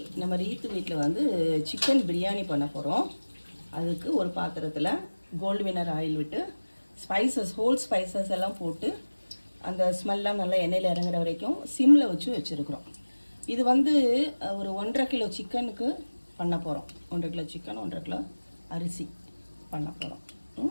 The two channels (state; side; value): inverted; both; correlation -1.00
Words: நம்ம ரீத்து வீட்டில் வந்து சிக்கன் பிரியாணி பண்ண போகிறோம். அதுக்கு ஒரு பாத்திரத்தில் கோல்டு வினர் ஆயில் விட்டு ஹோல் ஸ்பைசஸ் எல்லாம் போட்டு அந்த ஸ்மெல்லாம் நல்லா எண்ணெயில் இறங்குற வரைக்கும் சிம்மில் வச்சுருக்குறோம். இது வந்து ஒரு 1.5 கிலோ சிக்கனுக்கு பண்ண போகிறோம். 1.5 கிலோ சிக்கன், 1.5 கிலோ அரிசி பண்ண போகிறோம்.